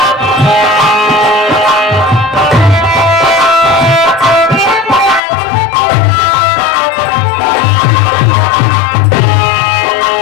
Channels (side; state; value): right; drops out; at 5.2 s